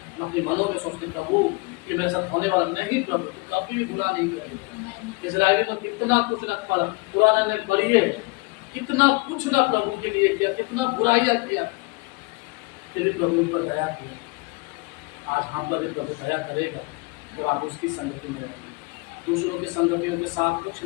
हम अपने मनों में सोचते प्रभु कि मेरे साथ होने वाला नहीं, प्रभु तो कभी बुरा नहीं करेगा। इस्राएली में कितना कुछ रख पाला, पुराना ने पढ़िए, कितना कुछ ना प्रभु के लिए किया, कितना बुराइयां किया, फिर भी प्रभु पर दया किया। आज हम पर भी प्रभु दया करेगा तो आप उसकी संगति में रहेंगे। दूसरों के संगतियों के साथ कुछ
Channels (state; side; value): quieter; right; 27.4 dB